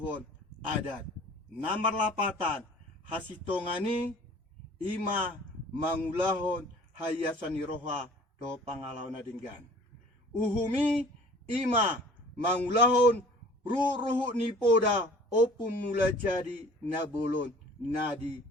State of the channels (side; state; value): both; normal; correlation 0.48